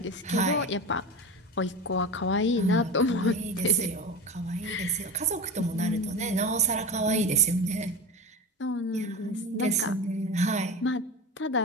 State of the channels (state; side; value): normal; both; correlation 0.27